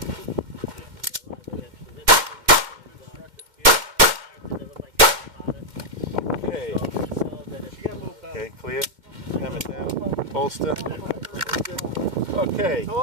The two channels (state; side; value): late; left; 2.1 ms